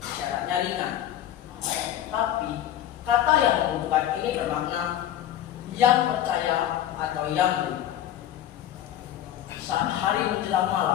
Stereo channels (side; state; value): right; quieter; 11.7 dB